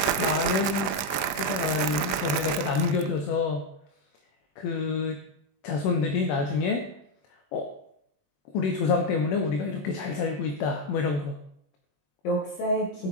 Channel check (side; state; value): right; late; 21 ms